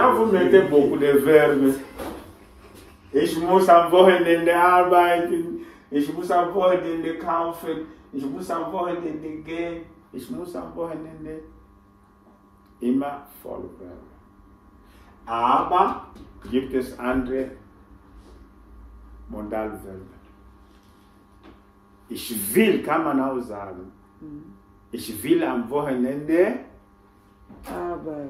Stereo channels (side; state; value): both; identical; correlation 1.00